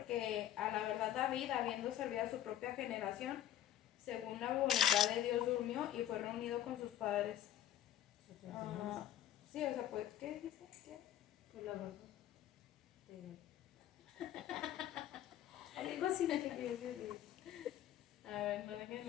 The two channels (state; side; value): quieter; right; 11.6 dB